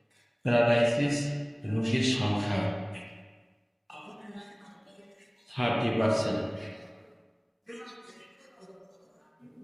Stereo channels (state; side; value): identical; both; correlation 1.00